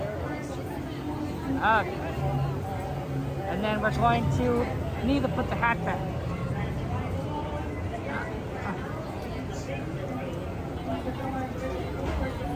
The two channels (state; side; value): identical; both; correlation 1.00